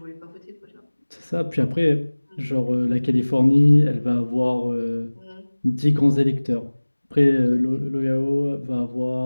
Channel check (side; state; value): both; inverted; correlation -1.00